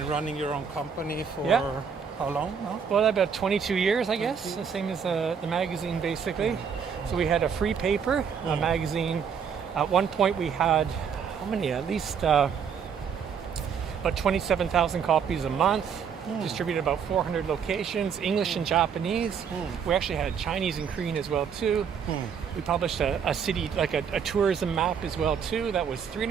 running your own company for Yeah. how long now? well, about 22 years, I guess, the same as the magazine, basically. So we had a free paper, a magazine. At one point we had, how many? At least about 27,000 copies a month, distributed about 400 locations, English and Japanese. We actually had Chinese and Korean as well, too. We published a city, like a tourism map as well, too. That was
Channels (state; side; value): quieter; left; 7.0 dB